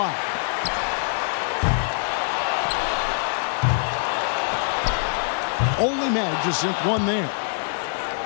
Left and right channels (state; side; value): silent; right; digital silence